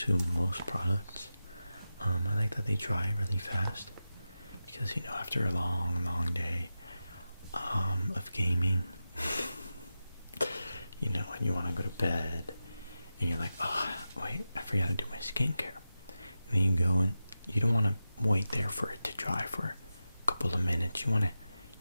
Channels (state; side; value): inverted; both; correlation -0.92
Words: most products, I like that they dry really fast, because, you know, after a long, long day, of gaming, you know, and you want to go to bed, and you're like, oh, wait, I forgot to do my skincare. And then you go and you don't want to wait there for it to dry for a couple of minutes. You want to,